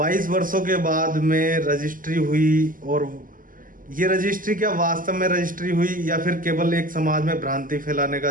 वर्षों के बाद में रजिस्ट्री हुई, और ये रजिस्ट्री क्या वास्तव में रजिस्ट्री हुई या फिर केवल एक समाज में भ्रांति फैलाने का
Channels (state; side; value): late; left; 0.40 ms